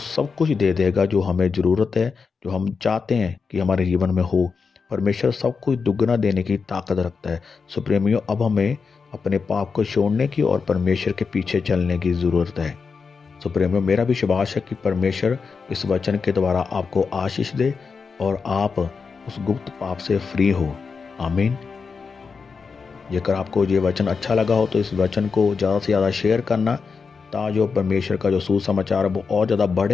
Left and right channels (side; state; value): right; quieter; 5.2 dB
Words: कुछ दे देगा जो हमें ज़रूरत है, जो हम चाहते हैं कि हमारे जीवन में हो। परमेश्वर सब कुछ दुगना देने की ताकत रखता है। सो प्रेमियों, अब हमें अपने पाप को छोड़ने की और परमेश्वर के पीछे चलने की ज़रूरत है। सो प्रेमियों, मेरा भी विश्वास है कि परमेश्वर इस वचन के द्वारा आपको आशीष दे और आप उस गुप्त पाप से फ्री हो। आमीन। जेकर आपको ये वचन अच्छा लगा हो तो इस वचन को ज़्यादा से ज़्यादा शेयर करना, ताकि परमेश्वर का जो सुसमाचार है वो और ज़्यादा